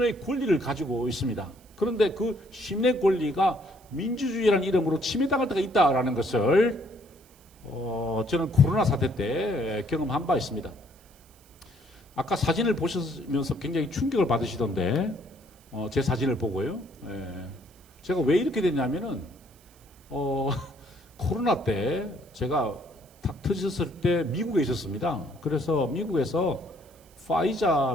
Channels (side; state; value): right; noise; hiss, 28 dB below the sound